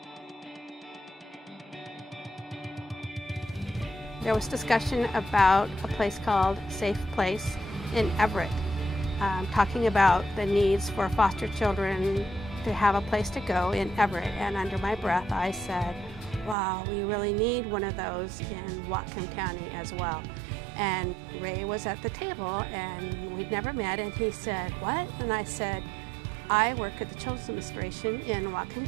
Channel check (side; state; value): left; drops out; at 16.6 s